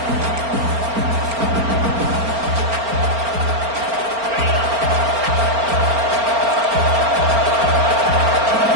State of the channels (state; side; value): late; left; 4.4 ms